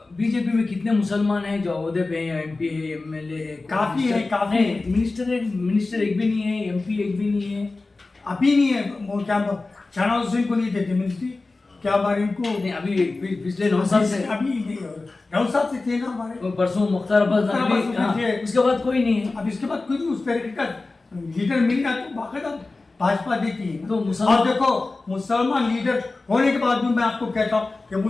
बीजेपी में कितने मुसलमान हैं जो ओहदे पे हैं, एमपी है, एमएलए है? काफी है, काफी है। मिनिस्टर एक भी नहीं है, एमपी एक भी नहीं है, अभी नहीं है। वो क्या शहनाज हुसैन को नहीं देते मिनिस्ट्री, क्या बार इनको नहीं, अभी पिछले 9 साल से, अभी 9 साल से थे ना हमारे। परसों मुख्तार अब्बास नकवी थे, उसके बाद कोई नहीं है। अब इसके बाद कोई नहीं उस तरीके का लीडर मिल गया तो बाकायदा भाजपा देती है। तो और देखो, मुसलमान लीडर होने के बाद भी मैं आपको कहता हूँ कि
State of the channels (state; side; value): quieter; right; 3.5 dB